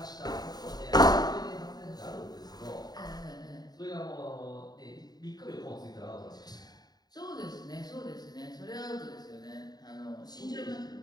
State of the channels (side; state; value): right; late; 0.19 ms